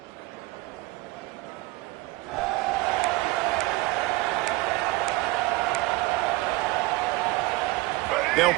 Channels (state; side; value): quieter; left; 21.4 dB